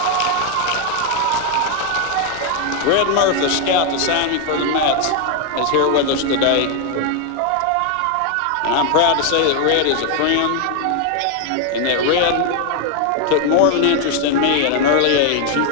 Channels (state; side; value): different; both; correlation 0.01